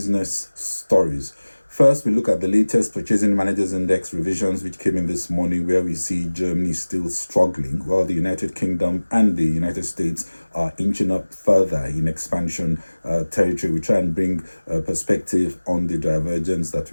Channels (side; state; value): both; inverted; correlation -1.00